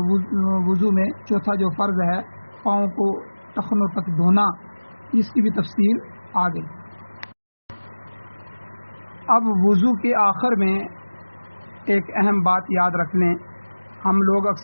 وضو میں چوتھا جو فرض ہے پاؤں کو ٹخنوں تک دھونا، اس کی بھی تفصیل آ گئی. اب وضو کے آخر میں ایک اہم بات یاد رکھ لیں، ہم لوگ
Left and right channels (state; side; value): inverted; both; correlation -1.00